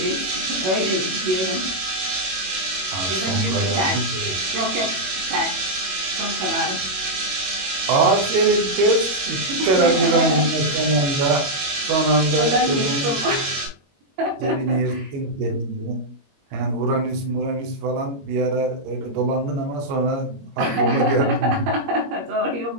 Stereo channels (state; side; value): late; left; 21 ms